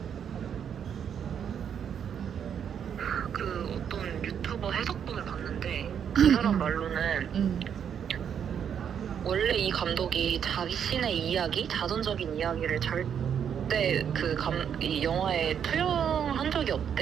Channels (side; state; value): left; quieter; 8.2 dB